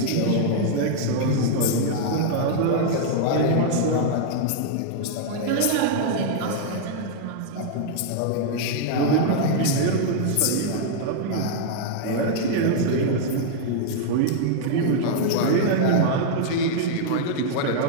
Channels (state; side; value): different; both; correlation -0.01